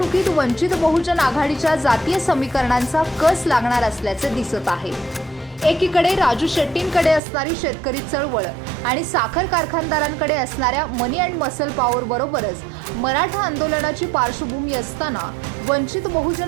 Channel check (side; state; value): left; drops out; at 7.2 s